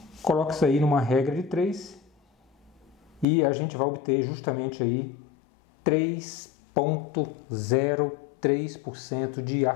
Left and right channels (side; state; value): right; drops out; at 3.2 s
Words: Coloque isso aí numa regra de 3 e a gente vai obter justamente aí 3,03% de